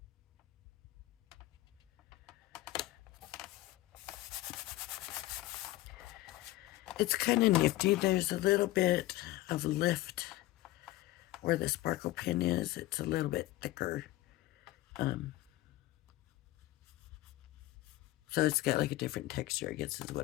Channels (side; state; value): right; quieter; 16.9 dB